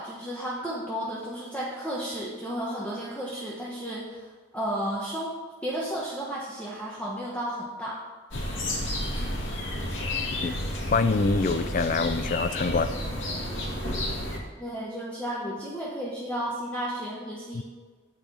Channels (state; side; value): normal; both; correlation 0.39